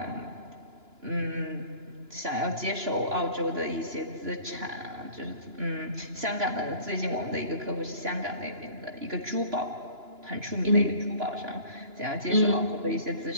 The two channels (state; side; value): late; left; 2.9 ms